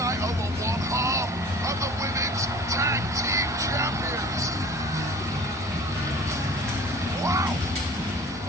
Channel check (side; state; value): both; normal; correlation 0.45